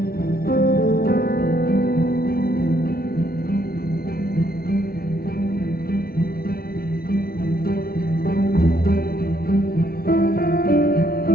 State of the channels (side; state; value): right; late; 0.44 ms